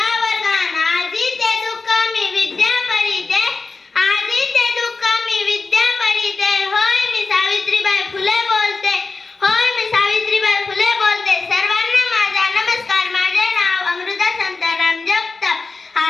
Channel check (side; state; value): right; quieter; 4.0 dB